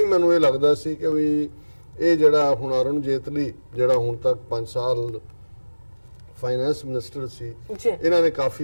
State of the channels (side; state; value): both; inverted; correlation -1.00